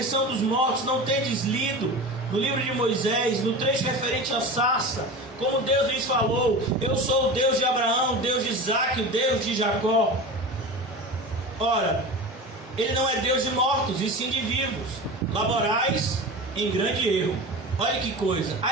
dos mortos, não tendes lido no livro de Moisés, no trecho referente à sarça, como Deus lhes falou: eu sou o Deus de Abraão, Deus de Isaque, o Deus de Jacó. Ora, ele não é Deus de mortos, e sim de vivos. Laborais em grande erro. Olha que coisa,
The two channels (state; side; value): normal; both; correlation 0.31